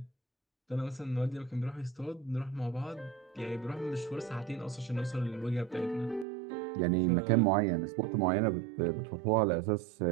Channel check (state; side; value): drops out; left; at 6.2 s